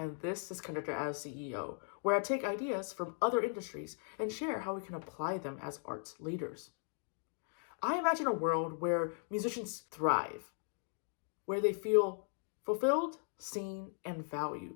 this is Conductor as CEO, where I take ideas from other industries and share how we can apply them as arts leaders. I imagine a world where musicians thrive, where they feel fulfilled, seen, and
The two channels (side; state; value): right; silent; 52 dB below the other